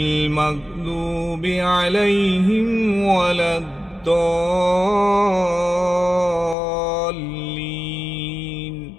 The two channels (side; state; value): right; drops out; at 6.6 s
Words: মাগদুবি আলাইহিম ওয়ালাদ-দাল্লিন।